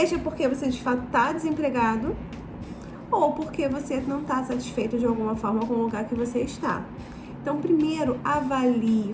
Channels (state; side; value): identical; both; correlation 1.00